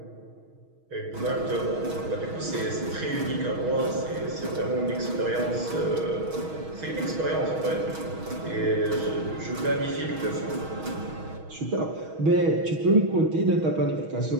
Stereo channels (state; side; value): late; left; 6.3 ms